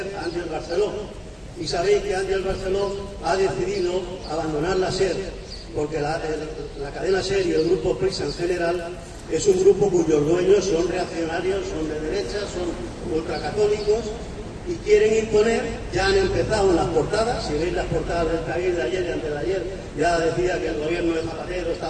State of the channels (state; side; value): identical; both; correlation 1.00